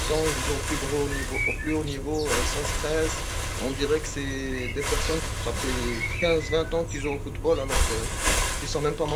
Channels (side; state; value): both; identical; correlation 1.00